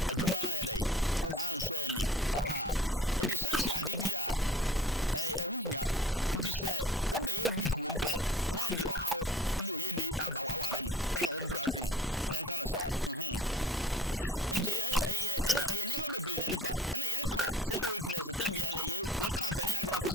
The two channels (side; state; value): both; normal; correlation 0.44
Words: adwuma na ye den anso ani aha enti sex ade bi a ehunya enti se wo be ye week wo mpe na de ohaw ni oye ni aba wawarem ene wo brandrim en kana sa enti ene nema bebre na de ba ene ye ka sexual weakness tembia na ye ka pene agna